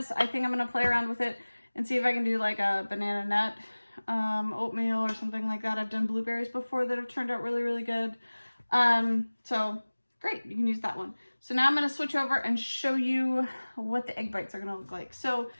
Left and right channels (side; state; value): both; inverted; correlation -1.00